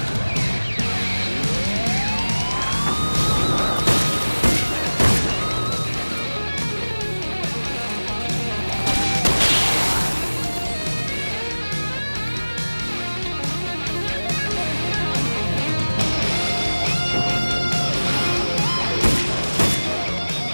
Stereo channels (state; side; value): inverted; both; correlation -1.00